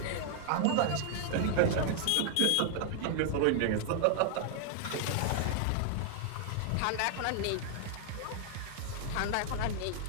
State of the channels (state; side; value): different; both; correlation 0.00